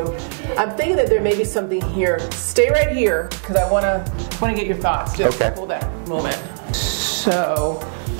I'm thinking that there may be something here. Stay right here because I want to get your thoughts. Just hold that moment. So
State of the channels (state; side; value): silent; left; digital silence